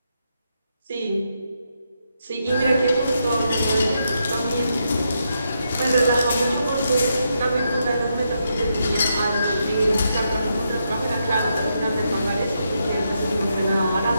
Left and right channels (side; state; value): both; inverted; correlation -0.81